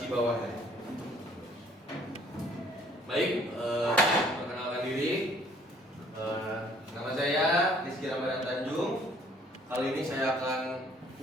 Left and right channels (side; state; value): both; normal; correlation 0.60